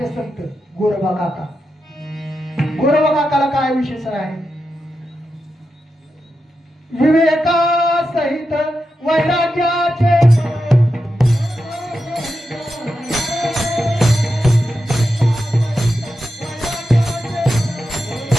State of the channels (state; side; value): normal; both; correlation 0.88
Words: संत गोरोबा काका. गोरोबा काकाला काय विशेषण आहे? विवेका सहित वैराग्याचे